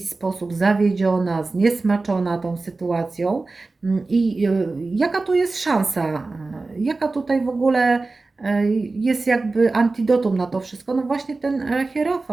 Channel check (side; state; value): left; quieter; 3.6 dB